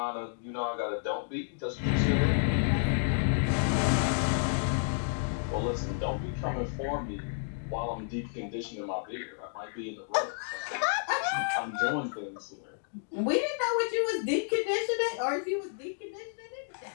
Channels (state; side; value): silent; right; digital silence